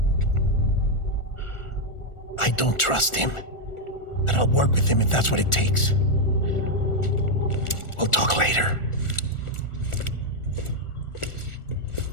I don't trust him, but I'll work with him if that's what it takes. We'll talk later.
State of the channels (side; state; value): right; late; 1.4 ms